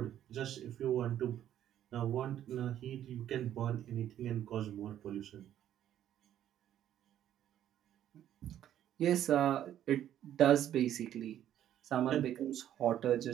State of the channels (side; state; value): left; quieter; 11.2 dB